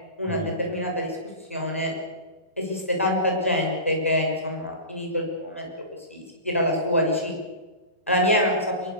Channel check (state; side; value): inverted; both; correlation -0.31